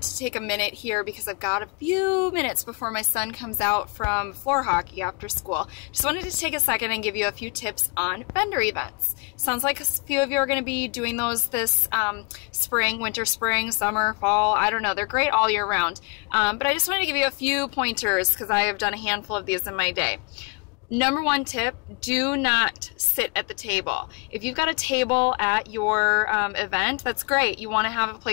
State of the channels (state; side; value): quieter; right; 31.5 dB